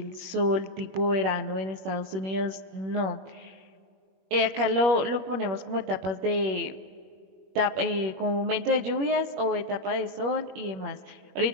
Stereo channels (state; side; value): late; left; 21 ms